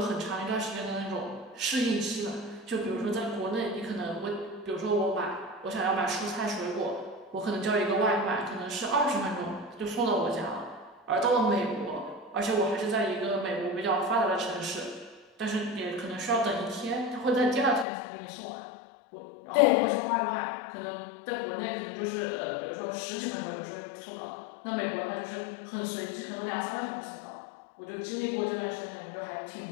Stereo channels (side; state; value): right; drops out; at 17.9 s